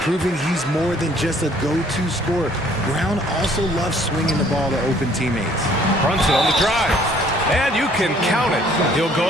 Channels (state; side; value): normal; both; correlation 0.60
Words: he's more than just a go-to scorer. Brown also loves swinging the ball to open teammates. Brunson on the drive, and you can count it. He'll